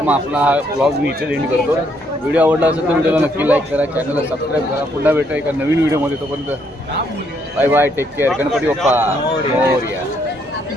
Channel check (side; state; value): both; normal; correlation 0.71